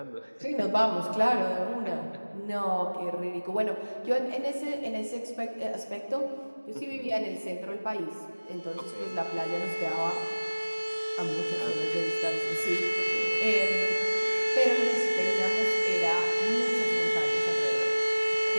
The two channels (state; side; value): inverted; both; correlation -1.00